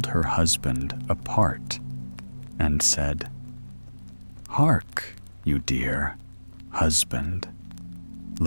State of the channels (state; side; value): inverted; both; correlation -1.00